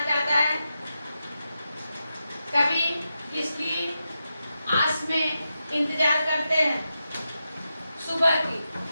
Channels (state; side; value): inverted; both; correlation -0.89